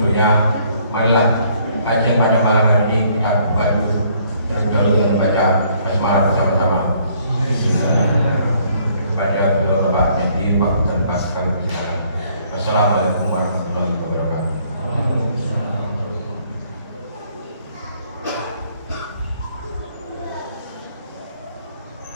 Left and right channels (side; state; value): both; inverted; correlation -0.64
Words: marilah kajian pada malam hari ini kita buka dulu terlebih dahulu dengan membaca basmalah bersama-sama. Kepada beliau Bapak Nyati, waktu dan pas kami persilakan. Wassalamualaikum warahmatullahi wabarakatuh.